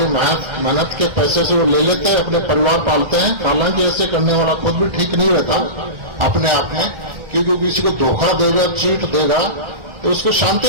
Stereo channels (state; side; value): late; left; 1.4 ms